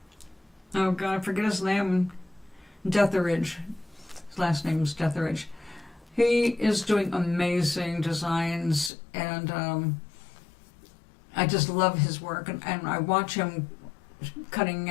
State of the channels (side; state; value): right; drops out; at 8.9 s